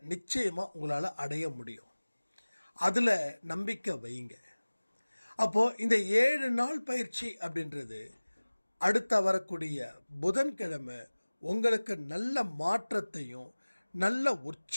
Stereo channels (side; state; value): both; inverted; correlation -1.00